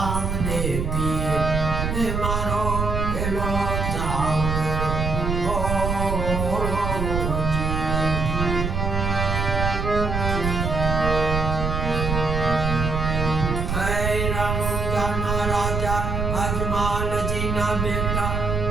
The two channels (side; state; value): right; noise; rumble, 1 dB below the sound